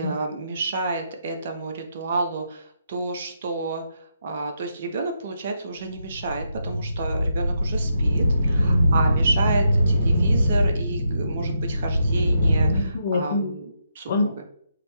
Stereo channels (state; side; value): inverted; both; correlation -0.81